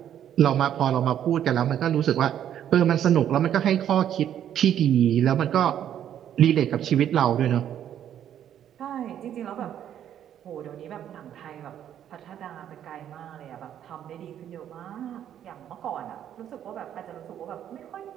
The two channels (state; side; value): quieter; left; 10.2 dB